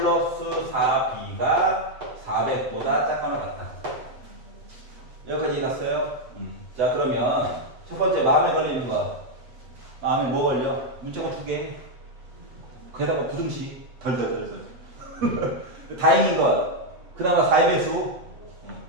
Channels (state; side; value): late; left; 8.0 ms